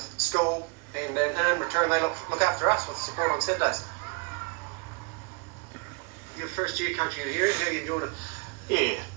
school, and in return they look after us with support on Saturdays. Your first year coaching at Heriot, how are you enjoying it? Yeah,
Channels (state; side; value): quieter; left; 31.2 dB